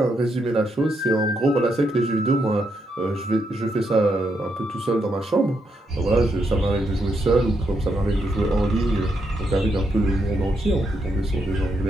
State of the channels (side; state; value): both; normal; correlation 0.79